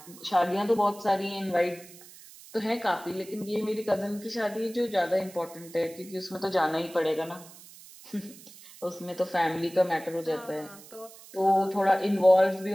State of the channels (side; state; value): right; noise; hiss, 19 dB below the sound